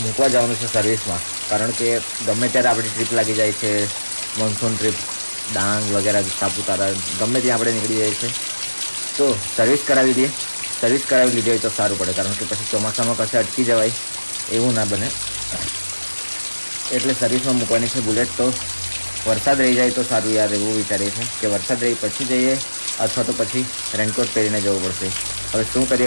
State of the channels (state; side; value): inverted; both; correlation -1.00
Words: મૂકવા જવાનું છે સર્વિસમાં. કારણ કે ગમે ત્યારે આપણી ટ્રીપ લાગી જાય છે, મોન્સૂન ટ્રીપ ડાંગ વગેરે, સાપુતારા, ગમે ત્યાં આપણે નીકળી જાય છે. તો સર્વિસ કરાવી દઈએ. સર્વિસ કરાવી લીધી હોય તો સારું પડે, કારણ કે પછી ચોમાસામાં કશે અટકી જવાય એવું ના બને. એટલે સર્વિસમાં મૂકવાની છે બુલેટ. તો વરસાદ રહી જાય તો સારું યાર, એવું વિચારીએ છે કે વરસાદ રહી પછી જઈએ, અથવા તો પછી રેનકોટ પહેરીને જવું પડશે. હવે શું